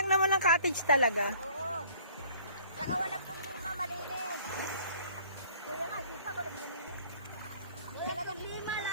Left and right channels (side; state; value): both; inverted; correlation -0.55